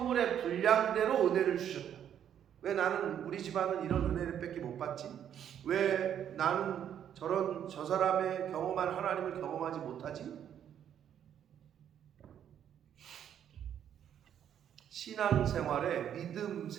분량대로 은혜를 주셨다. 왜 나는 우리 집안은 이런 은혜를 밖에 못 받지? 왜 나는 저 사람의 경험한 하나님을 경험하지 못하지? 신앙생활에, 믿음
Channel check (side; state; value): left; quieter; 9.5 dB